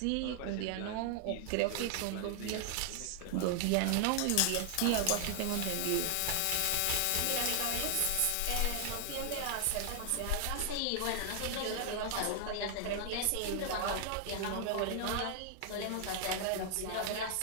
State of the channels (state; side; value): different; both; correlation 0.00